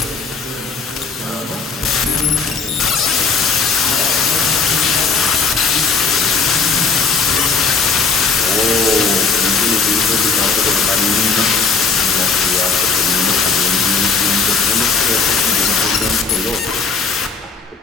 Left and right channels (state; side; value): quieter; right; 4.8 dB